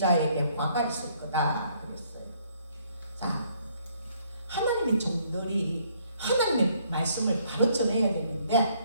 화가 있을 거다 그랬어요. 자, 하나님의 종들이 하나님의 말씀을 바로 전해야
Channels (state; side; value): inverted; both; correlation -0.66